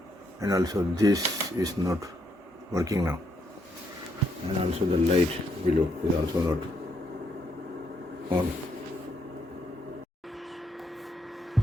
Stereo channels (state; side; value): normal; both; correlation 0.75